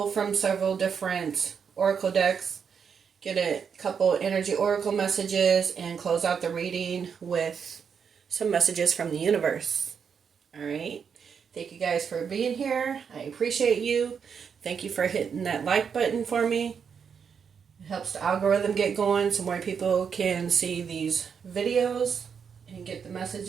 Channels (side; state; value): left; quieter; 6.7 dB